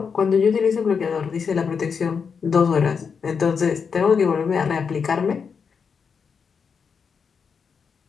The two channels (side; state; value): right; quieter; 6.0 dB